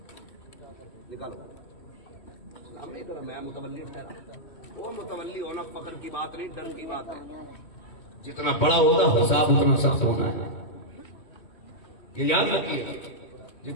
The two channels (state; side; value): late; right; 3.1 ms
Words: निकालो। सलाम नहीं करा, मैं मुतवल्ली ठहरा। वो मुतवल्ली होना फख्र की बात नहीं, डर की बात है। जितना बड़ा होगा हिसाब उतना सख्त होना है। ये याद रखिए,